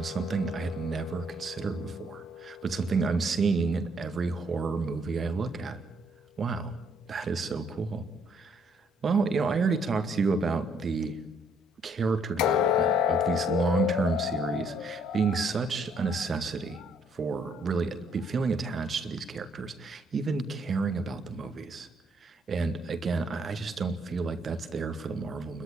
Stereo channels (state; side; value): normal; both; correlation 0.68